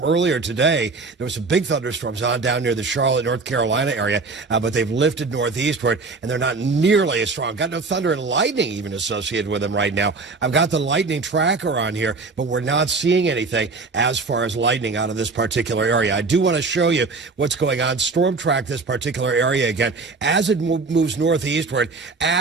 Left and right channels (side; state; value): left; quieter; 4.0 dB